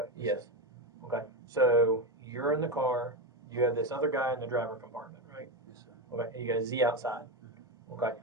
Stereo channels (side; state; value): both; normal; correlation 0.14